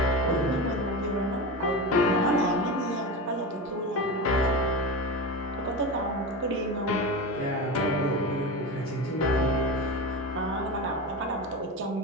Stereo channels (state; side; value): normal; both; correlation 0.23